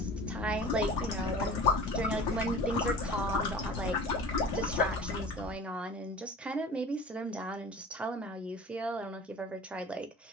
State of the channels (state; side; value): normal; both; correlation 0.39